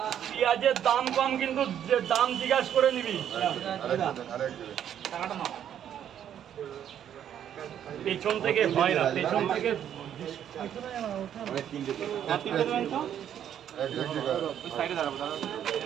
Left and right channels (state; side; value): quieter; left; 9.8 dB